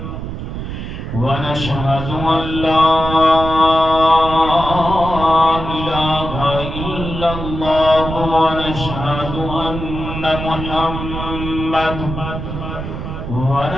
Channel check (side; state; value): right; noise; rumble, 7 dB below the sound